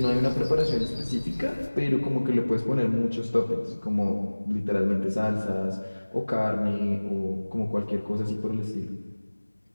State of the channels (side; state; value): both; inverted; correlation -1.00